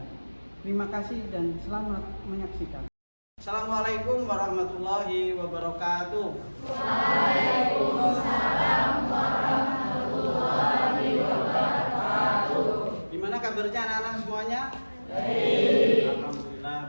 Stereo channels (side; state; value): both; inverted; correlation -1.00